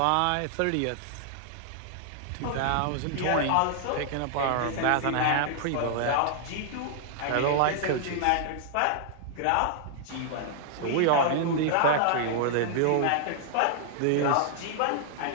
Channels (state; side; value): different; both; correlation -0.01